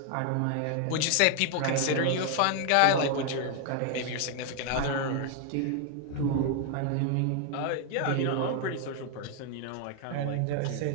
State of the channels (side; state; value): both; different; correlation 0.00